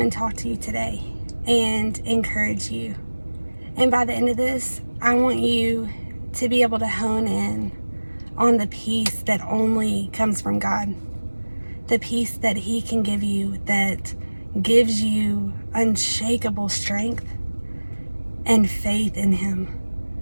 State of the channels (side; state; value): both; inverted; correlation -1.00